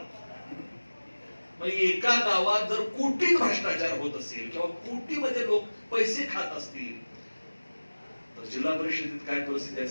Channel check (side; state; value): both; inverted; correlation -1.00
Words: एका गावात जर कोटीत भ्रष्टाचार होत असेल किंवा कोटीमध्ये लोक पैसे खात असतील तर जिल्हा परिषदेत काय परिस्थिती